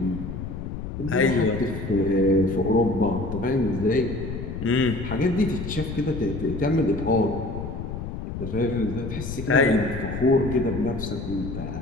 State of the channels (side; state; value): left; noise; rumble, 7 dB below the sound